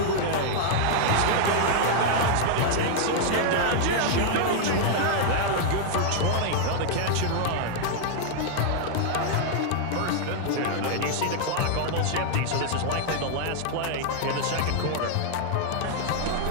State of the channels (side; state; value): both; different; correlation -0.01